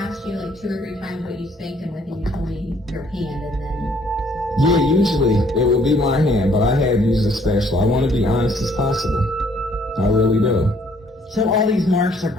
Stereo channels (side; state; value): both; normal; correlation 0.63